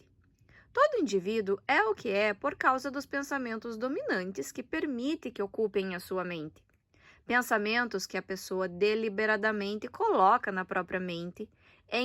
Todo indivíduo é o que é por causa dos pensamentos dominantes que permite que ocupem a sua mente. Pensamentos que a pessoa deliberadamente coloca na própria mente,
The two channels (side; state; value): both; identical; correlation 1.00